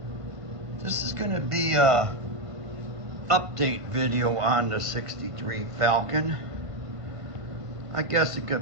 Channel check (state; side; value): late; left; 1.5 ms